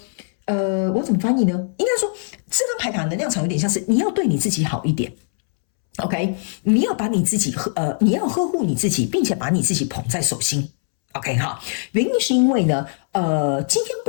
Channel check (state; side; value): silent; right; 65 dB below the other